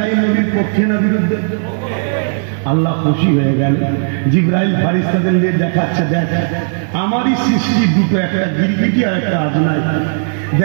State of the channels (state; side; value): silent; left; digital silence